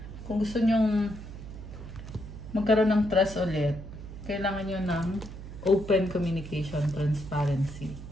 kung gusto nyong magkaroon ng trust ulit, kailangan nyo ng open communication, transparency.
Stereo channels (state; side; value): noise; right; hum, 12 dB below the sound